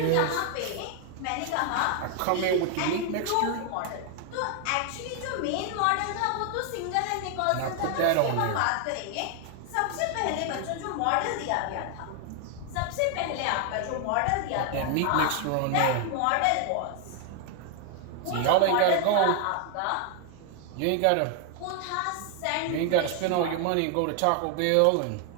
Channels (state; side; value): different; both; correlation 0.00